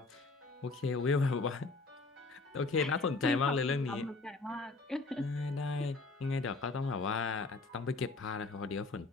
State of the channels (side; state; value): right; quieter; 3.7 dB